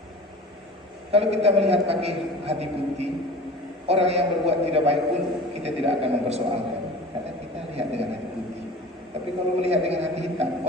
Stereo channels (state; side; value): normal; both; correlation 0.38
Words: Kalau kita melihat pakai hati putih, orang yang berbuat tidak baik pun kita tidak akan mempersoalkan, karena kita lihat dengan hati putih. Tapi kalau melihat dengan hati hitam,